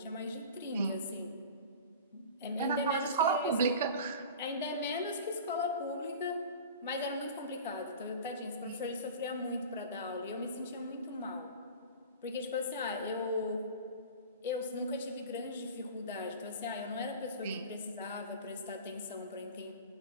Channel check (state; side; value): inverted; both; correlation -0.36